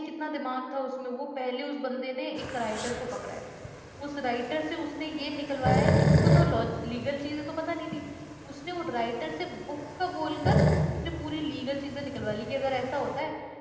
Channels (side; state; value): both; identical; correlation 1.00